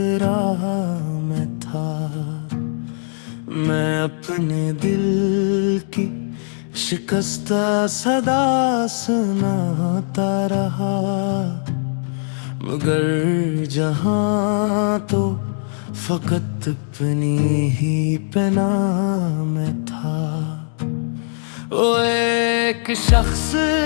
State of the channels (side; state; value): right; silent; digital silence